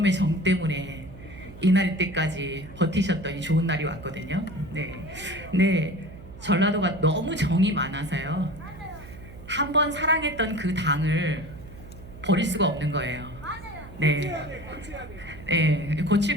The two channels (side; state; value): right; noise; hum, 16 dB below the sound